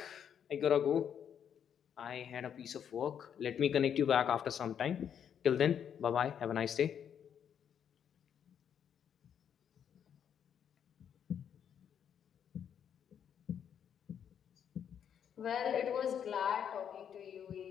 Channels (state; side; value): quieter; right; 8.5 dB